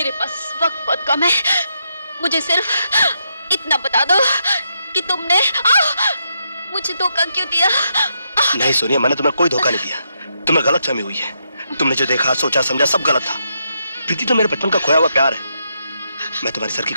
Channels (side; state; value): both; inverted; correlation -0.81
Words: पास वक्त बहुत कम है। मुझे सिर्फ इतना बता दो कि तुमने मुझे धोखा क्यों दिया? नहीं सोनिया, मैंने तुम्हें कोई धोखा नहीं दिया। तुम्हें गलतफहमी हुई है। तुमने जो देखा, सोचा, समझा सब गलत था। प्रीति तो मेरे बचपन का खोया हुआ प्यार है। मैं तुम्हारी सर की